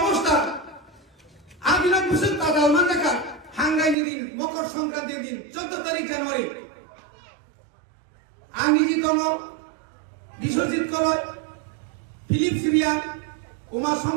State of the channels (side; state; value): left; drops out; at 4.0 s